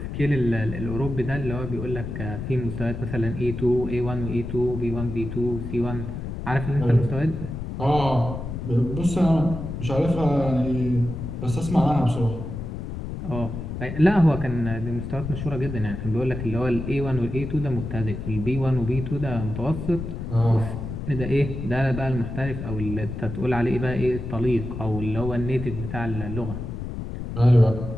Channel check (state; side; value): noise; left; rumble, 6 dB below the sound